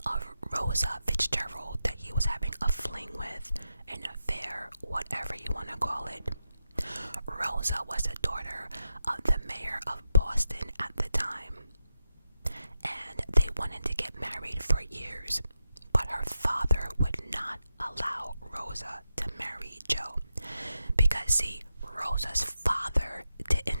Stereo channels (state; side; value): inverted; both; correlation -0.88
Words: of Rosa Fitzgerald that he was having a fling with, an affair, whatever you want to call it. Rosa was the daughter of the mayor of Boston at the time, and they wanted to get married for years, but her father would not allow Rosa to marry Joe because, see, Rosa's father